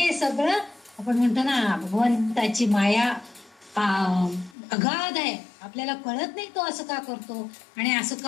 सगळं आपण म्हणतो ना, भगवंताची माया अगाध आहे. आपल्याला कळत नाही तो असं का करतो आणि असं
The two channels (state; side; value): drops out; right; at 4.5 s